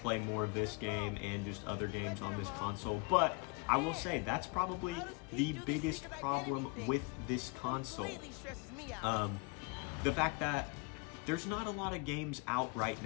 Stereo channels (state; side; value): quieter; right; 30.4 dB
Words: more of this game and just other games on this console. But I will say that's probably the biggest problem with this console. The fact that there's not a lot of games out right